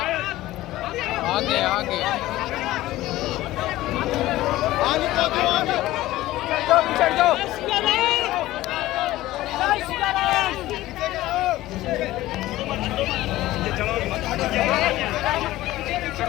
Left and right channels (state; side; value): quieter; right; 16.3 dB